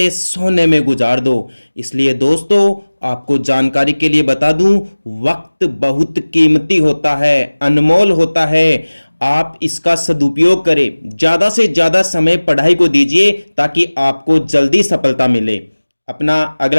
सोने में गुजार दो। इसलिए दोस्तों, आपको जानकारी के लिए बता दूं, वक्त बहुत कीमती होता है, अनमोल होता है। आप इसका सदुपयोग करें, ज्यादा से ज्यादा समय पढ़ाई को दीजिए ताकि आपको जल्दी सफलता मिले। अपना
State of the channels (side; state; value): both; inverted; correlation -1.00